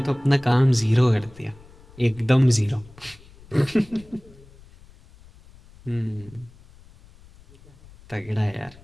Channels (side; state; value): left; noise; rumble, 24 dB below the sound